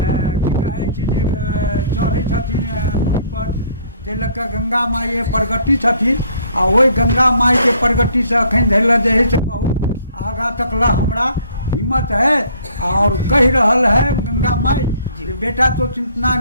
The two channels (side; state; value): both; inverted; correlation -0.59